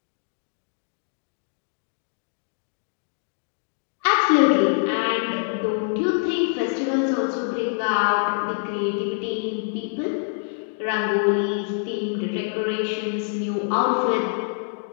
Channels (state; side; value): silent; right; digital silence